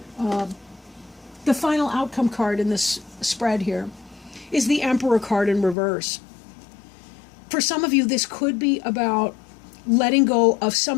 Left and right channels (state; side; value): drops out; right; at 5.8 s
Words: The final outcome card in this spread here is the Emperor card in reverse. For some of you, this could be about letting go of